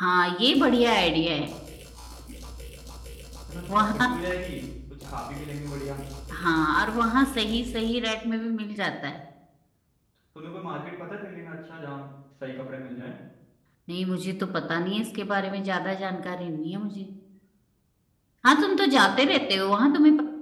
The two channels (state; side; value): identical; both; correlation 1.00